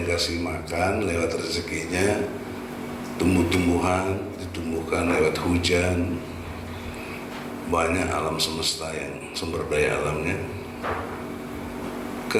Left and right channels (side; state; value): both; identical; correlation 1.00